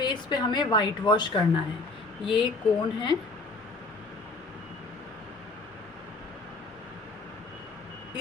पे हमें वाइट वॉश करना है। ये कोन है,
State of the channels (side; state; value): right; quieter; 3.2 dB